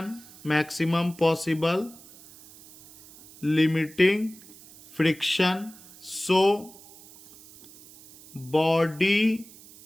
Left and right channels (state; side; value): noise; right; hiss, 21 dB below the sound